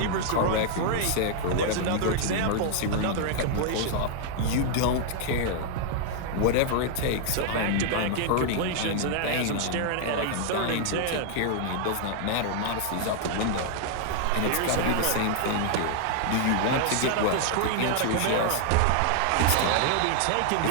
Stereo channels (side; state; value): both; different; correlation -0.01